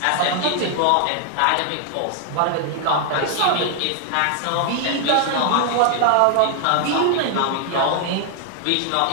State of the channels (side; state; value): both; different; correlation 0.00